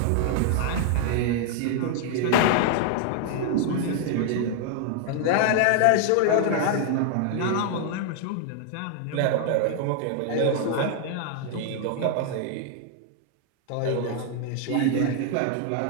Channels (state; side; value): different; both; correlation 0.00